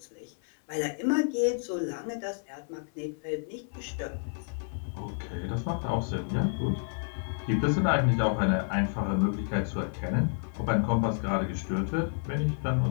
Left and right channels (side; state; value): right; silent; 58 dB below the other